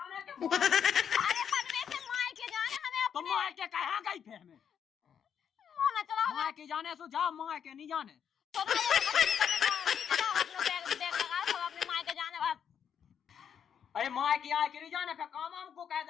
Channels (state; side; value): quieter; right; 8.1 dB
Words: पनवे से मायके जाने हमें तो अपने। माँ के कहा गई फिर हमें मोना चला माँ के जाने सो जा, माँ के नहीं जाने। तो अपने बैग लगा सब अपने मायके जाने बस। अरे माँ की आए के नहीं जाने, फिर काम हमको कह